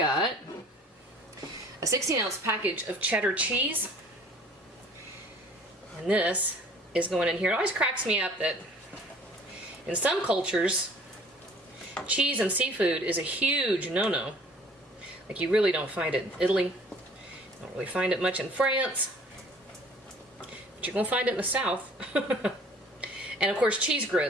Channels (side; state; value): both; normal; correlation 0.52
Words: a 16-ounce package of cheddar cheese. And this is going in here. It always cracks me up that in some cultures, cheese and seafood is a huge no-no. Like, you really don't find it in Italy. Don't really find it much in France. But you're gonna find it in the South. And of course, cheese